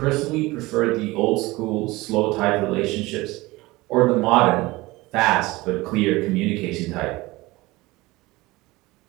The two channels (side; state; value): left; quieter; 20.7 dB